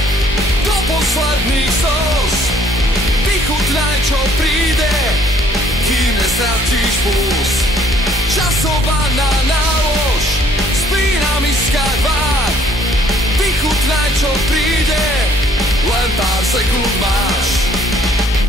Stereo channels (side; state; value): both; normal; correlation 0.61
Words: do posledných slz. Vychutnaj, čo príde, kým nestratíš puls. Časovaná nálož, spínam iskať vár. Vychutnaj, čo príde, len pár sekúnd máš.